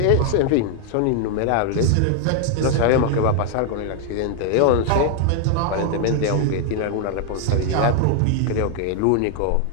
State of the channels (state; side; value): different; both; correlation 0.00